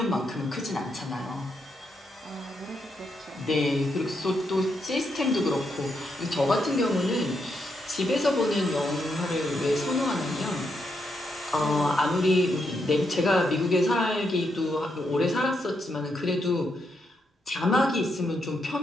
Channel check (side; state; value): both; normal; correlation 0.81